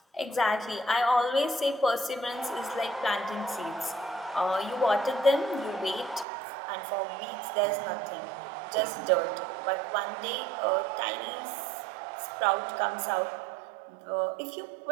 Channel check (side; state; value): left; drops out; at 6.2 s